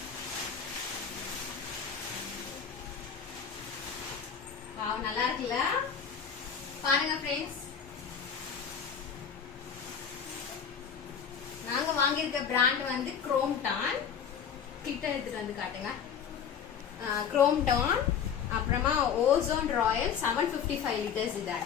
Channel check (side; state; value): right; quieter; 7.5 dB